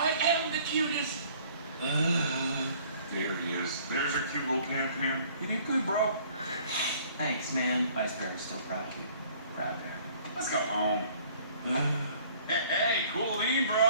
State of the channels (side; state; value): both; inverted; correlation -0.56